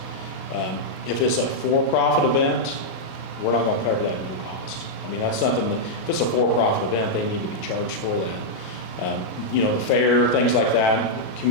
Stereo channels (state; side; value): late; right; 38 ms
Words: If it's a for-profit event, we're not going to cover that at no cost. I mean, that's something that, if it's a for-profit event, they need to be charged for that. The fair, things like that,